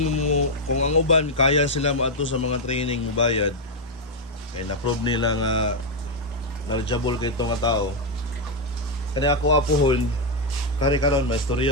mo, kung ang uban kaya sila maato sa mga training mo bayad kaya na-prove nila nga knowledgeable kay itong tao. Kaya ako apuhon kari karon may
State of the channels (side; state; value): both; normal; correlation 0.01